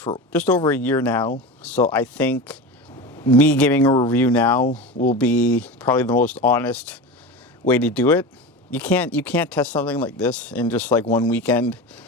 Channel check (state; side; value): normal; both; correlation 0.26